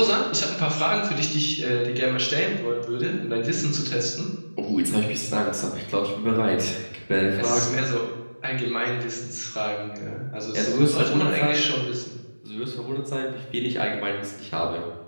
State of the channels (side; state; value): both; inverted; correlation -1.00